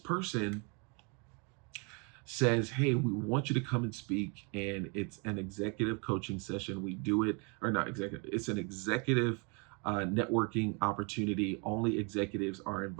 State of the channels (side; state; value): left; quieter; 34.0 dB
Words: says, hey, we want you to come and speak, and it's an executive coaching session. We do it, or not executive, it's an executive networking opportunity. Only executives are